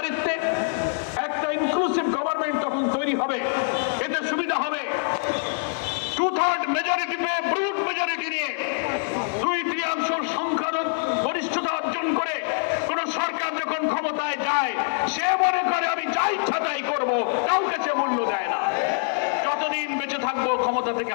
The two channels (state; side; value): silent; right; 62 dB below the other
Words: একটা ইনক্লুসিভ গভর্নমেন্ট তখন তৈরি হবে। এতে সুবিধা হবে 2/3 মেজরিটি পেয়ে ব্রুট মেজরিটি নিয়ে 2/3 সংখ্যার গরিষ্ঠতা অর্জন করে কোন সরকার যখন ক্ষমতায় যায় সে মনে করে আমি যা ইচ্ছা তাই করবো, কাউকে সে মূল্য দেয় না। যতদিন বেঁচে থাকবো ক্ষমতা থেকে